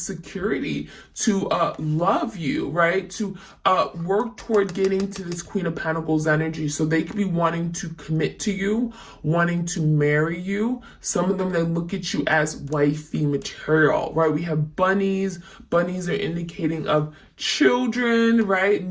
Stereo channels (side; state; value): both; identical; correlation 1.00